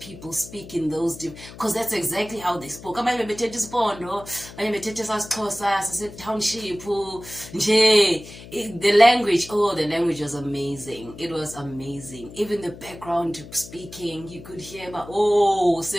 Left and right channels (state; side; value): noise; left; hum, 16 dB below the sound